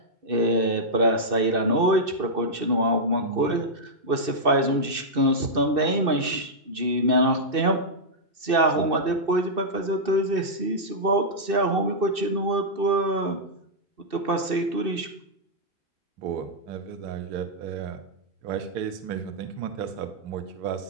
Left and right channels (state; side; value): late; left; 2.6 ms